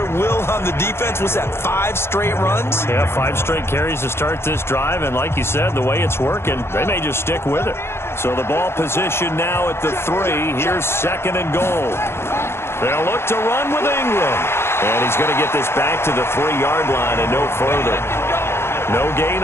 will on the defense. Was that 5 straight runs? Yeah, 5 straight carries to start this drive. And like you said, the way it's working, they may just stick with it. So the ball position now at the 3. Here's 2nd and goal. They'll look to run with Ingram. And he's going to get this back to the 3-yard line and no further. No gain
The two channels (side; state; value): right; late; 0.12 ms